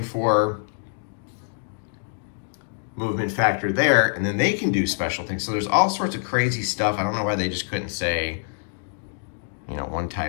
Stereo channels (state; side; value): silent; right; 62 dB below the other